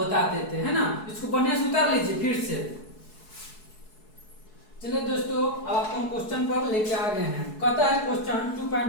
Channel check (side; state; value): right; late; 4.7 ms